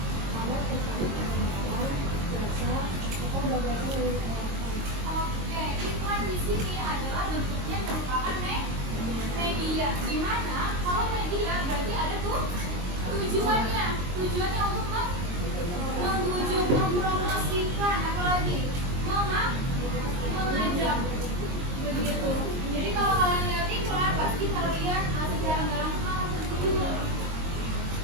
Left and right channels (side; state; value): left; late; 22 ms